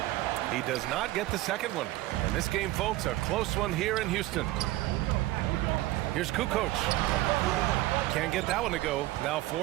He does not get the second one. And this game, folks, a close one here in Houston. Here's Kukoc. Can't get that one to go. Now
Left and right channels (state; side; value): quieter; left; 17.2 dB